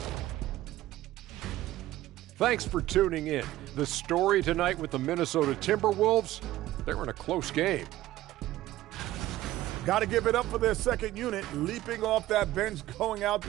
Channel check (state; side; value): quieter; left; 15.5 dB